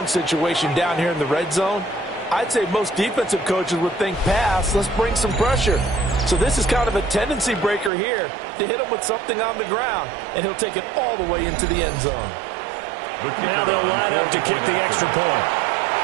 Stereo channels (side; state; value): left; drops out; at 7.9 s